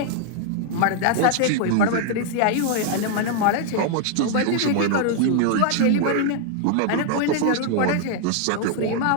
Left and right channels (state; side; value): different; both; correlation 0.00